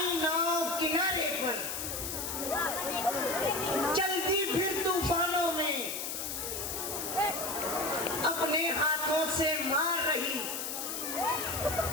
नाव किनारे पर चलती फिर तूफानों में, अपने हाथों से मार रही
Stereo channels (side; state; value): left; noise; hiss, 4 dB below the sound